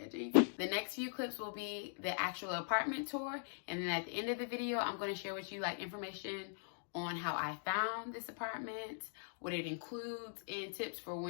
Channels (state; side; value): silent; right; digital silence